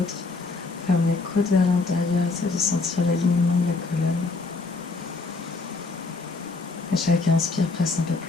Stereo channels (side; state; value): right; quieter; 3.8 dB